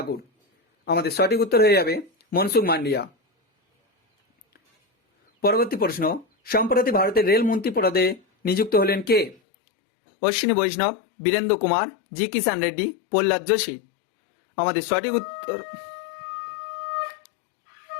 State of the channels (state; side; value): drops out; right; at 9.3 s